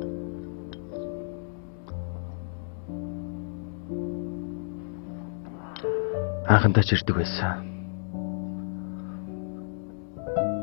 Анхандаа ч ирдэг байсан.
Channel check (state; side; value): silent; right; digital silence